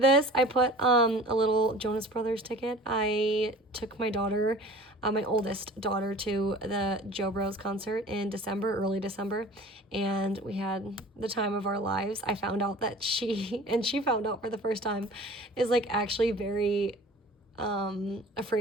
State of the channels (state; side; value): normal; both; correlation 0.44